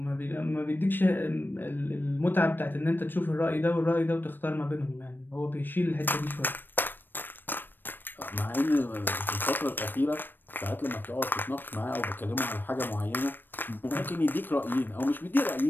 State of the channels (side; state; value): right; late; 0.094 ms